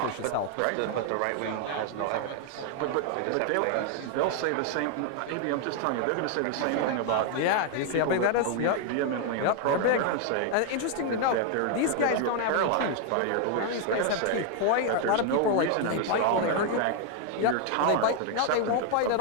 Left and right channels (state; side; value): different; both; correlation 0.00